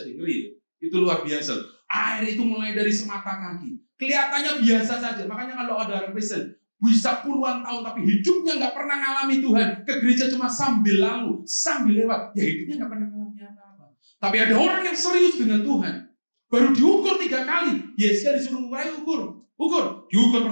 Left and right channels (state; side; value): inverted; both; correlation -1.00